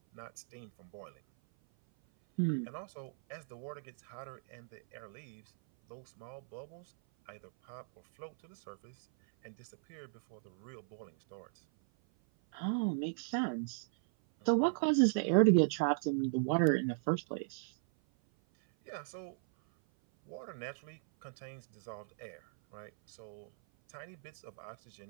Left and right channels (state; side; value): silent; left; 53 dB below the other